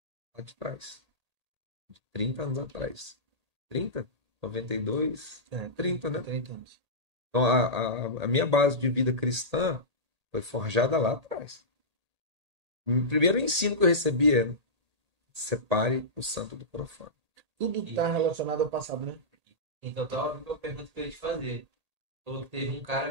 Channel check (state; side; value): late; left; 1.8 ms